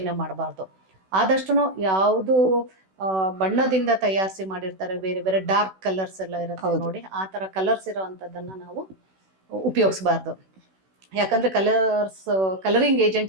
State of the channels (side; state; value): left; late; 16 ms